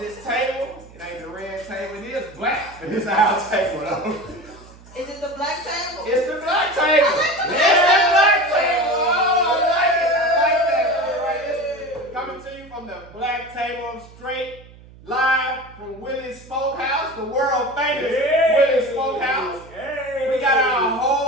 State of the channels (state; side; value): noise; right; hum, 22 dB below the sound